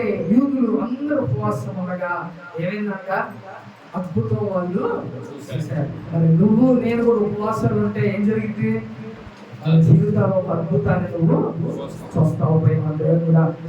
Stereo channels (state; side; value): identical; both; correlation 1.00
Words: యూదులు అందరూ ఉపవాసం ఉండగా ఏమైందంట? అద్భుతం వాళ్ళు చేశారు. మరి నువ్వు నేను కూడా ఉపవాసాలు ఉంటే ఏం జరిగింది? జీవితంలో ఒక అద్భుతాన్ని నువ్వు చూస్తావు. కూడా